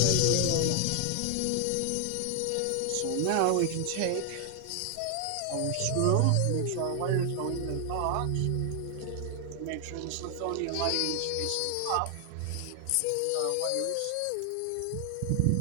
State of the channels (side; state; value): both; different; correlation 0.00